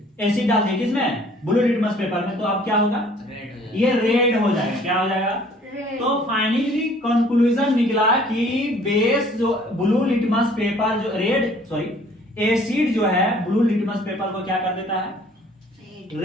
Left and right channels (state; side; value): normal; both; correlation 0.56